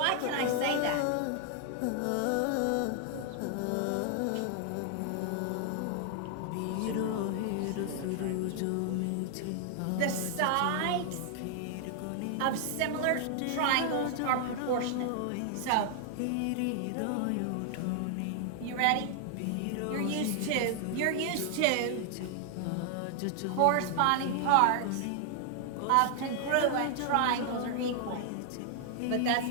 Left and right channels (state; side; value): different; both; correlation 0.00